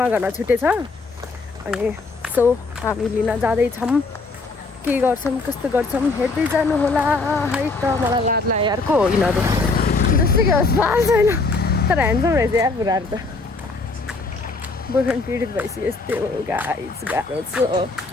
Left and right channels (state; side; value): quieter; right; 3.7 dB